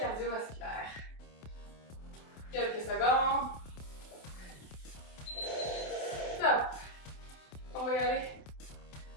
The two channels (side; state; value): right; late; 28 ms